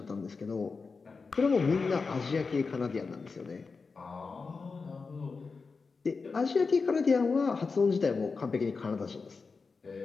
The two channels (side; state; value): right; quieter; 4.6 dB